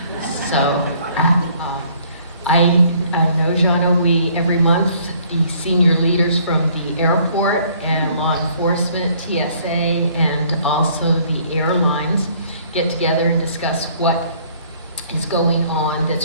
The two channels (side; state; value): both; inverted; correlation -0.60